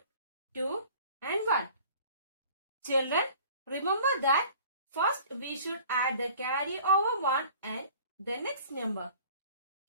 2 and 1. Children, remember that first we should add the carry over 1 and the next number.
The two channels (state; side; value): inverted; both; correlation -0.48